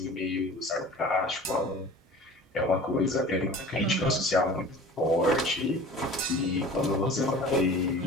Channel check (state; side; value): normal; both; correlation 0.42